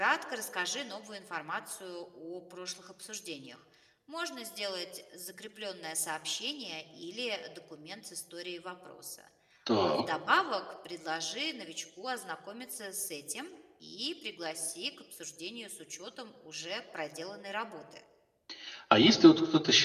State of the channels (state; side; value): identical; both; correlation 1.00